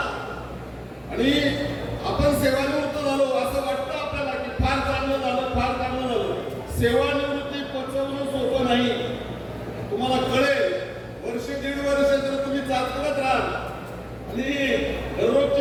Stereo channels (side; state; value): both; identical; correlation 1.00